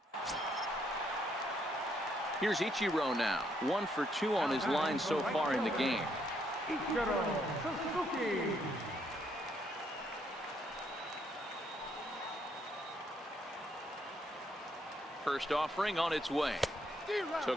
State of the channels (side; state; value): both; normal; correlation 0.73